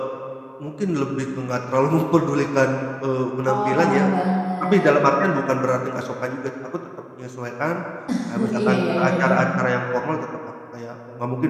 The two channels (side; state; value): both; identical; correlation 1.00